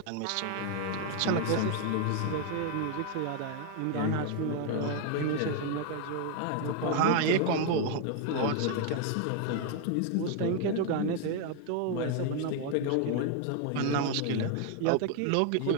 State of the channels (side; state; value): both; different; correlation 0.01